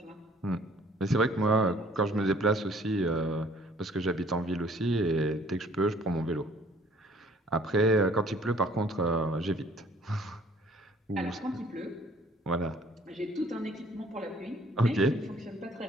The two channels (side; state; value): both; normal; correlation 0.57